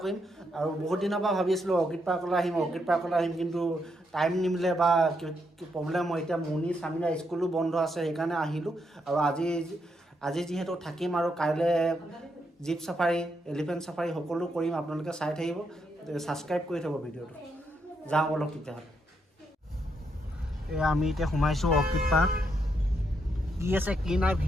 কৰিম আৰু বহুত দিনৰ পৰা ভাবি আছিলোঁ অৰ্কিড পাৰ্কলৈ আহিম কিন্তু টাইম নিমিলে বা প্ৰব্লেম হয় এতিয়া মুনি স্বামীৰা স্কুলো বন্ধ আছে সেইকাৰণে আহিলোঁ আৰু আজি যিহেতু থাকিম আৰু কাইলৈ জীপ চাফাৰী এলিফেণ্ট চাফাৰী সকলো কৰিম আপোনালোকে চাই থাকিব ছাবস্ক্ৰাইব কৰি থ'ব ভিডিঅ'টো যাওঁ অলপ তেতিয়াহ'লে আমি এতিয়া সোমাইছোঁ অৰ্কিড পাৰ্ক কি আছে কি নাই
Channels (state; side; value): normal; both; correlation 0.79